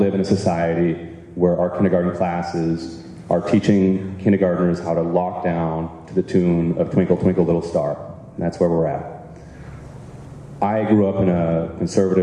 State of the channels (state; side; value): identical; both; correlation 1.00